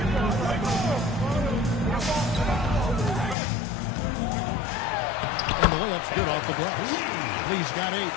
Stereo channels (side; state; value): right; drops out; at 3.4 s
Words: And the layup's good off the glass. Lee's got 8.